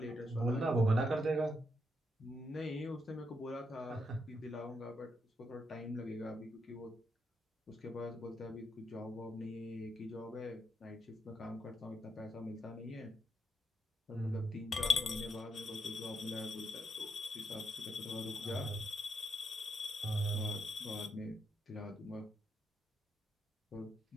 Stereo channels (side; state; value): both; normal; correlation 0.80